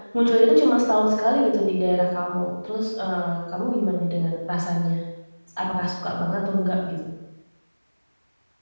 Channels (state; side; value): inverted; both; correlation -1.00